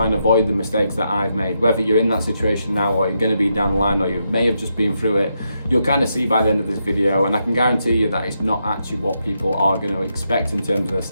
and avoid the mistakes that I've made. Whether you're in that situation now or you're going to be down the line or you may have just been through it, you'll kind of see by the end of this video, and I can guarantee you that it's not actually what people are going to expect in terms of their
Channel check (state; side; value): inverted; both; correlation -0.82